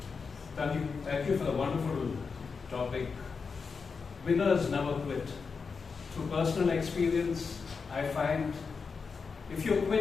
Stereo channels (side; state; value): right; quieter; 5.2 dB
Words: Thank you for the wonderful topic. Winners never quit. Through personal experience, I find if you